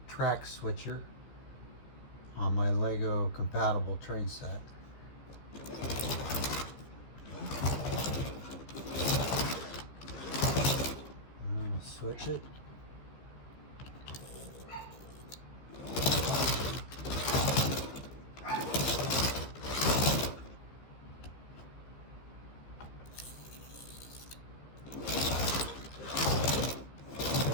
track switcher on my Lego compatible train set. I'm going to switch it.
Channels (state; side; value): late; right; 14 ms